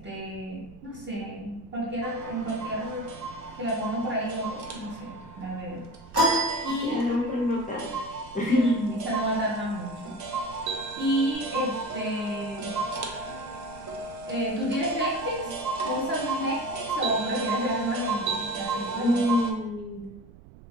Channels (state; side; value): noise; right; rumble, 20 dB below the sound